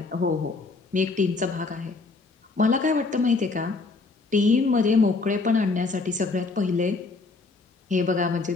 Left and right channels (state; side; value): quieter; right; 3.9 dB